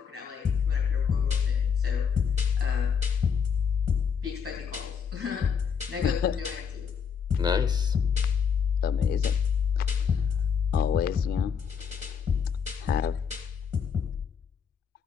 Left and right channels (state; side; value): quieter; right; 6.8 dB